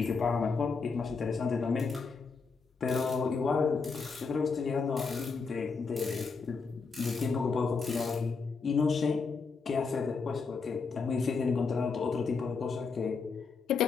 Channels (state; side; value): quieter; right; 4.8 dB